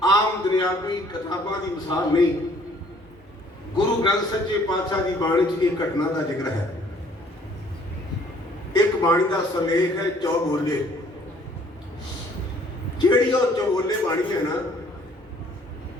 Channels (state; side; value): normal; both; correlation 0.59